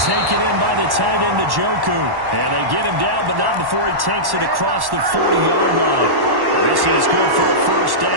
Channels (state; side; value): late; left; 1.1 ms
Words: Taken in by the tight end, Njoku. And they get him down, but not before he takes it across the 40-yard line. This is good for a first